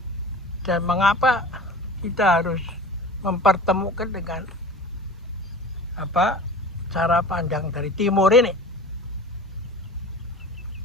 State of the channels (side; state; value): both; normal; correlation 0.38